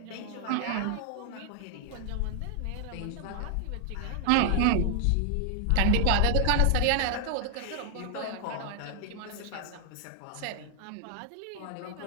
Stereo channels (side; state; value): both; different; correlation 0.00